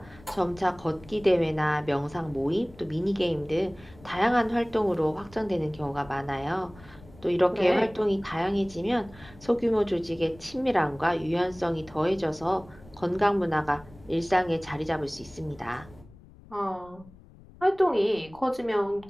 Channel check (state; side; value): noise; left; rumble, 22 dB below the sound